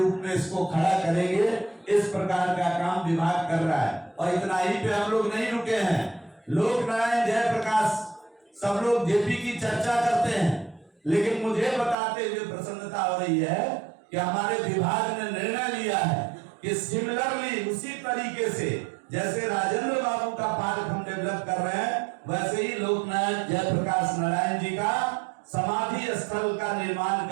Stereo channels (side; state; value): left; drops out; at 12.0 s